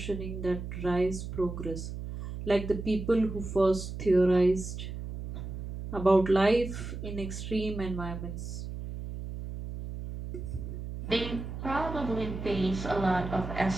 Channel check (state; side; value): noise; right; hum, 7 dB below the sound